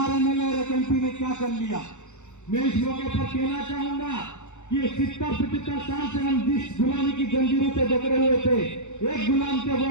एमएलए और एक एमपी ने क्या कर लिया। मैं इस मौके पर कहना चाहूंगा कि 70-75 साल से हम जिस गुलामी की जंजीरों से जकड़े हुए थे, एक गुलाम से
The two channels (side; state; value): right; late; 0.84 ms